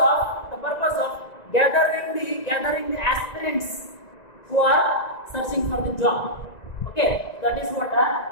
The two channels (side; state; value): right; late; 1.9 ms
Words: of gathering the aspirants who are searching for the job. Okay, that is what